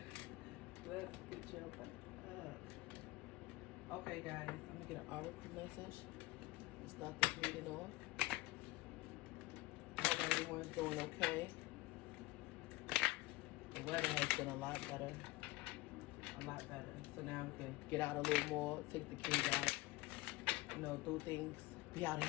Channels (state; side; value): quieter; right; 20.6 dB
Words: Let's get your butt up. Okay, guys, I'm gonna get an article message. Let's start this reading off. Hope everyone's doing okay. The weather has been a lot better. So now we can get out a little more, take the kids out, do things, be out in